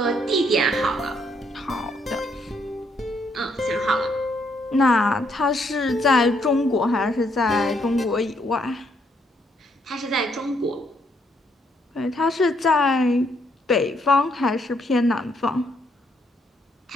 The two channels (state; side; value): normal; both; correlation 0.72